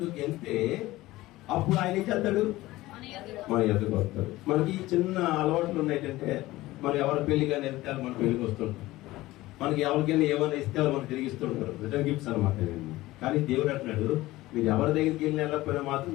వెళ్తే అప్పుడు ఆయన ఏం చేస్తాడు? మన ఎదుగు వస్తాడు. మనకి చిన్న అలవాట్లు ఉన్నాయంటే మనం ఎవరి పెళ్లి కానీ వెళ్తే మన పెళ్లికి వస్తుంటాం. మనకి ఎవరికైనా ఏమైనా ఇస్తే మనకు తిరిగిస్తుంటారు, రిటర్న్ గిఫ్ట్స్ అనమాట. కానీ దేవుడు అంటున్నాడు, మీరు ఎవరి దగ్గరికి వెళ్ళిన వెళ్ళకపోయినా మాత్రం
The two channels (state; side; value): quieter; right; 17.8 dB